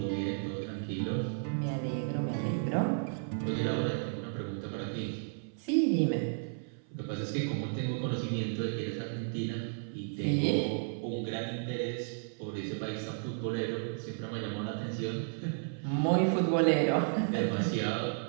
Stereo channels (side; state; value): left; silent; 56 dB below the other